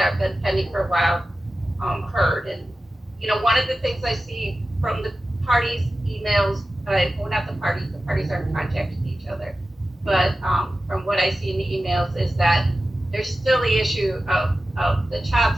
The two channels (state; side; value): normal; both; correlation 0.94